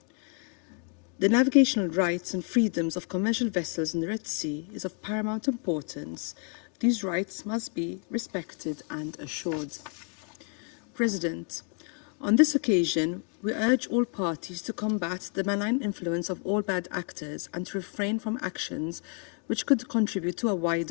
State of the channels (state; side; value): quieter; right; 39.0 dB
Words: The navigational rights and freedoms of commercial vessels in the Red Sea is of paramount importance. These rights must be respected and assured. President, on this occasion, we urge all parties to combat the malign influence of all bad actors and to refrain from actions which could contribute to a